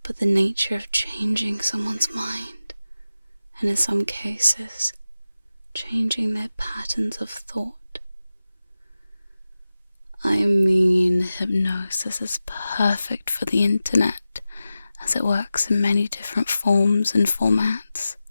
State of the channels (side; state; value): both; inverted; correlation -0.94